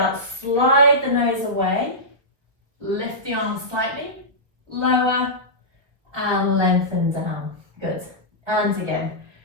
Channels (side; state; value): left; late; 1.1 ms